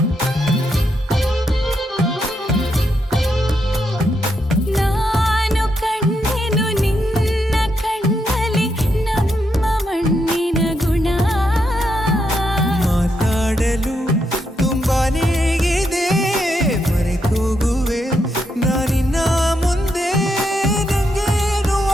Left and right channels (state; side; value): normal; both; correlation 0.80